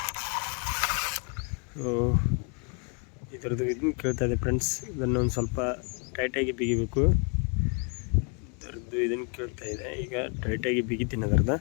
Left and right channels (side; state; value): right; quieter; 37.8 dB